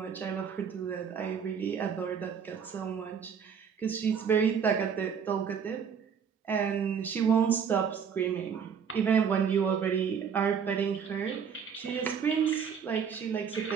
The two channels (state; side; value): quieter; left; 7.1 dB